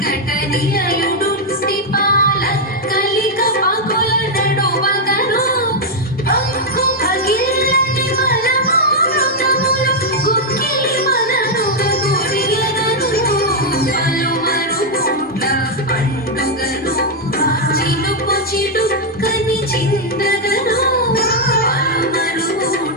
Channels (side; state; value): both; normal; correlation -0.01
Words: స్థిపాల కలిక పగుల నడువగను పంకు పగిల్లని బలమృతములు గుక్కిలి మననుగ గురియగను పలుమరుగుట్ల పండుగను చిలుకు చిడుక్కని చిందగను